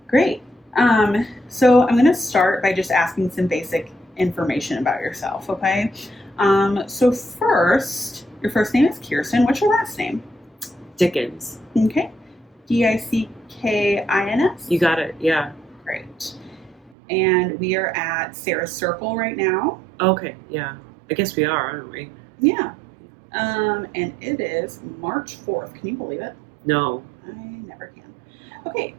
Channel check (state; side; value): drops out; left; at 16.9 s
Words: great. So I'm going to start by just asking some basic information about yourself, okay? So first, your first name is Kirsten. What's your last name? Dickens. Okay. Dickins? You got it. Yeah. Great. And we are at Sarah's Circle right now. Okay. Yeah. I guess we are, aren't we? Yeah. And it is March 4th. Can you believe it? No. I never can. Okay,